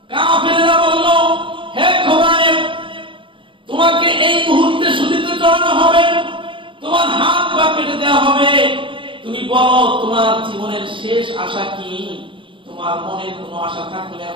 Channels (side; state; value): left; late; 0.25 ms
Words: কাফেররা বলল, হে খোবাইব, তোমাকে এই মুহূর্তে শুলিতে চড়ানো হবে, তোমার হাত পা কেটে দেওয়া হবে। তুমি বলো তোমার জীবনের শেষ আশা কি? তোমার মনে কোনো আশা থাকলে